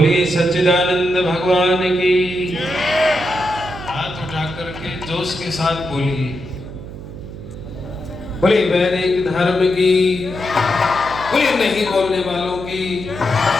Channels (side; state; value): right; noise; hum, 12 dB below the sound